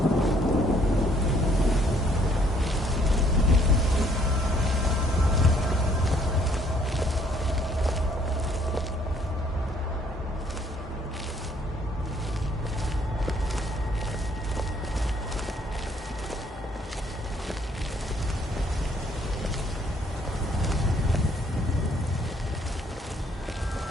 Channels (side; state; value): both; normal; correlation 0.64